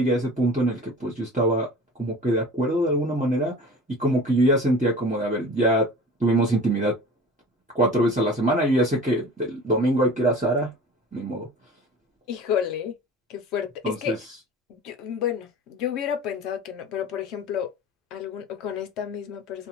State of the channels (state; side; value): normal; both; correlation 0.39